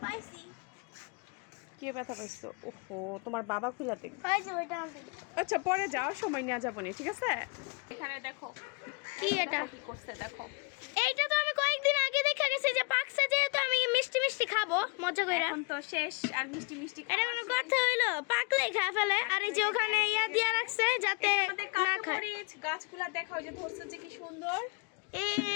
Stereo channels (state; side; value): quieter; right; 31.8 dB